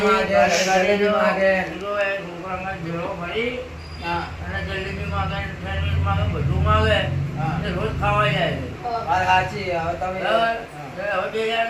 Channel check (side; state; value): both; identical; correlation 1.00